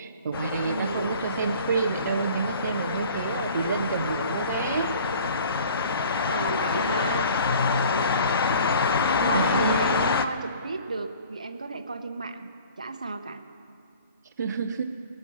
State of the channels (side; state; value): both; inverted; correlation -0.47